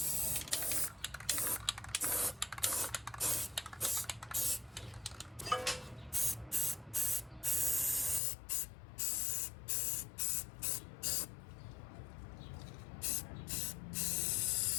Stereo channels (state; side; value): drops out; right; at 8.2 s